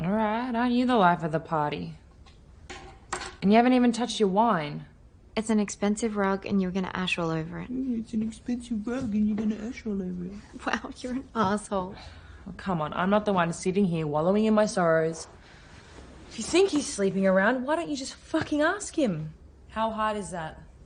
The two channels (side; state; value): both; identical; correlation 1.00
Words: Alright, aren't you the life of the party? And you haven't even touched your wine. It's an expensive rug and you're gonna ash all over it. It's an expensive rug and you're gonna ash all over it. Wow, you're an asshole. Oh, come on, I'm not the one sitting here wallowing in my sorrows. If you think he's sleeping around, why don't you just fucking ask him? How hard is that?